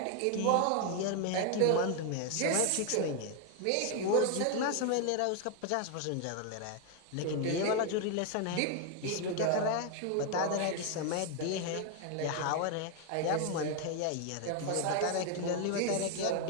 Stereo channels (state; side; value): different; both; correlation 0.01